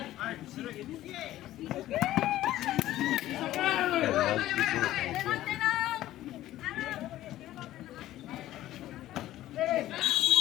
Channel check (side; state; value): right; quieter; 14.4 dB